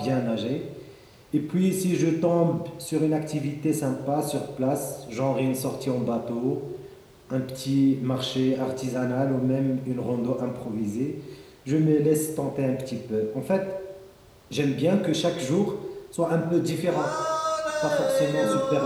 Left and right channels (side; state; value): both; identical; correlation 1.00